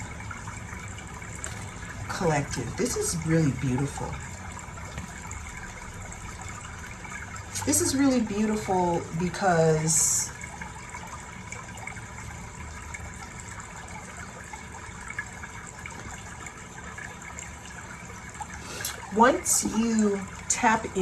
Collective. This is really beautiful. This is really beautiful because once you tap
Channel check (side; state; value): both; identical; correlation 1.00